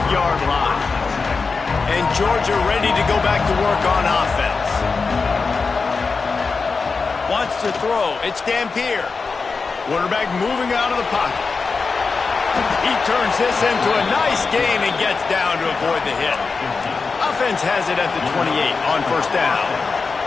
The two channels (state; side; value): quieter; right; 4.6 dB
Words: line. And Georgia ready to go back to work on offense. Wants to throw. It's Dampier. Quarterback moving out of the pocket. He turns this into a nice gain and gets down to avoid the hit. Offense has it at the 28 on 1st down.